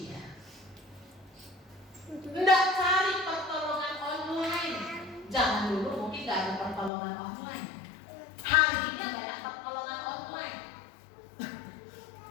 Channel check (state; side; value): drops out; right; at 6.9 s